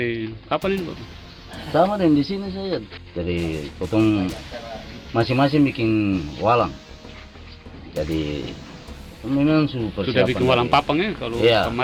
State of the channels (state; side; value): identical; both; correlation 1.00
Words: kapan ini, Bapak? Sama dengan di sini saya. Jadi potong masing-masing bikin walang. Jadi memang sudah bikin walang papang ya, kalau iya.